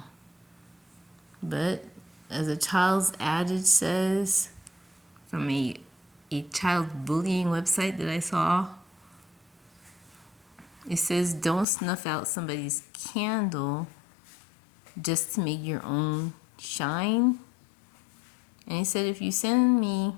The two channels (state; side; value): drops out; right; at 11.7 s